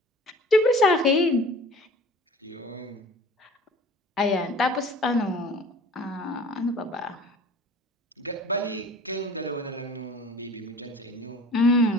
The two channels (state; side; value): normal; both; correlation 0.44